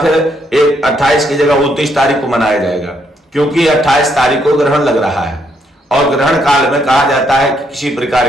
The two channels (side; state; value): both; normal; correlation 0.74